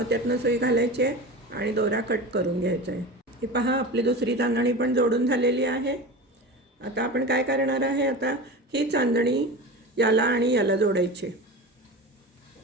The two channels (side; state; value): both; normal; correlation 0.30